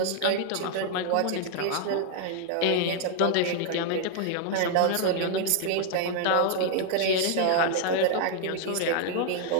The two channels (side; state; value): both; different; correlation 0.00